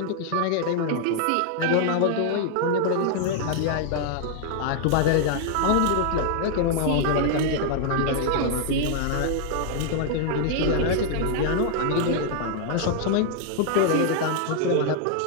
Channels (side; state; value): both; different; correlation -0.01